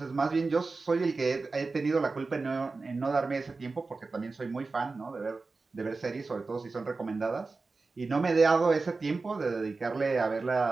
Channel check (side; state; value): left; quieter; 3.9 dB